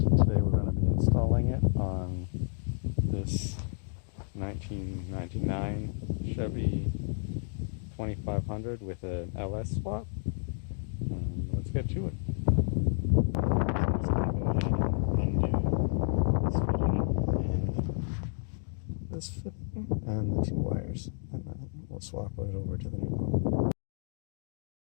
today we're going to be installing it on this 1999 Chevy 2500 with an LS swap. Let's get to it. I'm just going to go ahead and undo this fitting and the two wires, and then we'll swap it over to the new pump.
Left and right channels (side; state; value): right; silent; digital silence